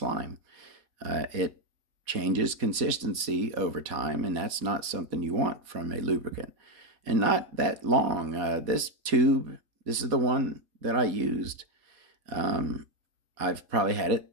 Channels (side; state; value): left; late; 4.1 ms